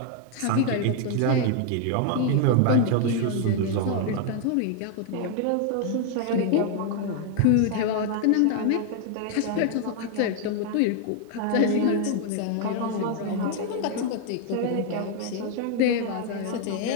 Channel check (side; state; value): both; different; correlation 0.00